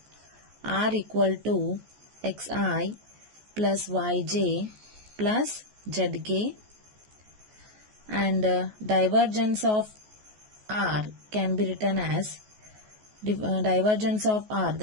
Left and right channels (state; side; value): late; left; 14 ms